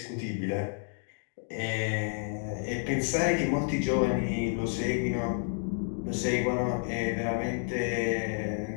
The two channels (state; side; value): silent; right; 58 dB below the other